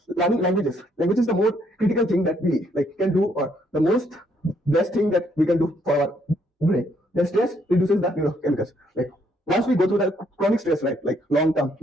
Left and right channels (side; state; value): both; normal; correlation 0.70